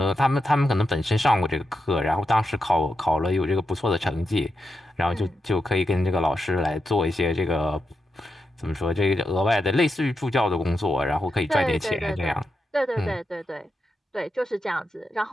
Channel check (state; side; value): normal; both; correlation 0.87